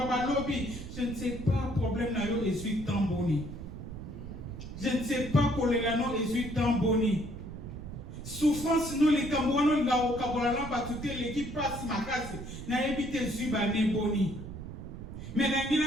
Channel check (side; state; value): right; noise; rumble, 10 dB below the sound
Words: Balobi. Je ne sais pas, problème n'a eu, et suis tamboni. Je ne sais pas, Colérano, et suis tamboni. Souffrance, nous les Camerounais, là au Cameroun, l'équipe passe ma casse, n'a évité Zubane Boni. Mais n'a